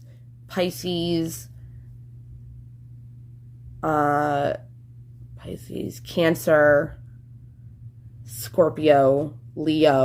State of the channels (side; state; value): both; identical; correlation 1.00